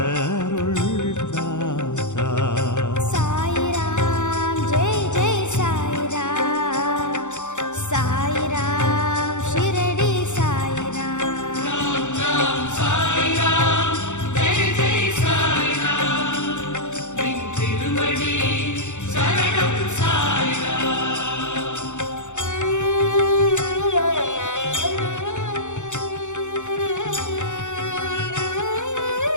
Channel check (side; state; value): right; late; 0.84 ms